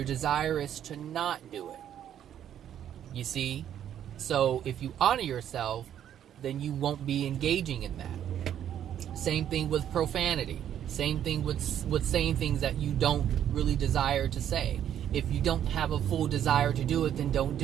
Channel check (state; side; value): quieter; left; 10.2 dB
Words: desire is to not do it. You see? So, if you honor yourself, then you won't be engaging in that. Same thing with profanity. Same thing with saying things that you don't really desire to say. If you don't have a full desire to do it, then don't